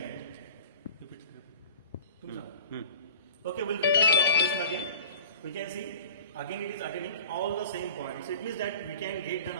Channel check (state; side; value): inverted; both; correlation -0.40